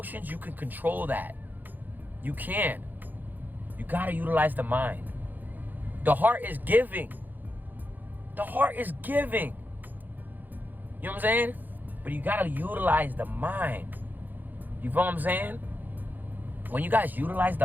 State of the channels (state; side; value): late; left; 0.086 ms